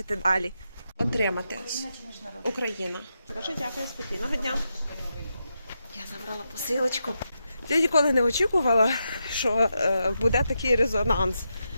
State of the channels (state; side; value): inverted; both; correlation -0.86